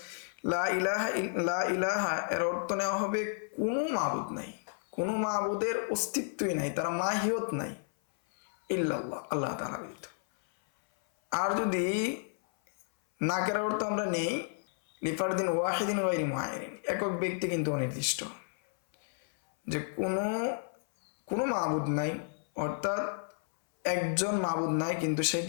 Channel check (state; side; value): silent; right; 57 dB below the other